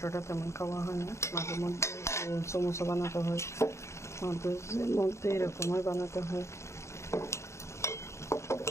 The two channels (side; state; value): right; late; 0.14 ms